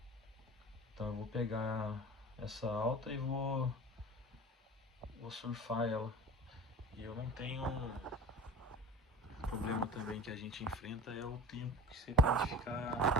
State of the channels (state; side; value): normal; both; correlation 0.37